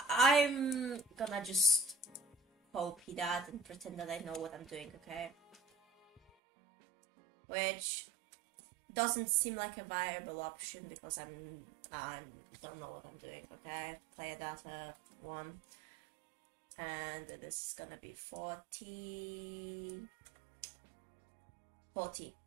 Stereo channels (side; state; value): left; drops out; at 6.3 s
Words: gonna just copy that and pretend that I know what I'm doing, okay? Which doesn't seem like a viable option because I don't know what I'm doing, okay? Player data 1. And this is gonna be 40.